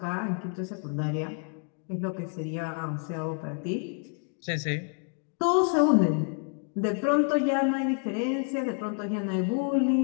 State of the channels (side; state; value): right; quieter; 39.7 dB